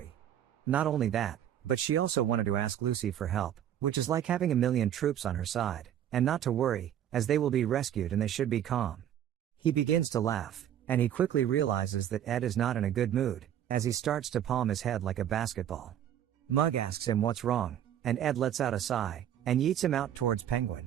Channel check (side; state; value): left; quieter; 10.5 dB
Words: Not only that, but she also wanted to ask Lucy for help, which is like having a million troops on her side, and not to worry, as they will be rescued and they should be calm. He begins to laugh, and he quickly realizes that Ed is not in a good mood, as he starts to palm his head like a basketball. Mug asks him what's wrong, and Ed lets out a sigh, and yeets him out towards